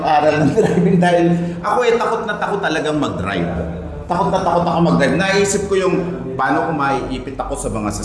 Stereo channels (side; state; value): both; identical; correlation 1.00